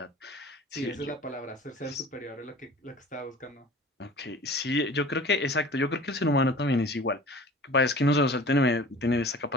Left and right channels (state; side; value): normal; both; correlation 0.43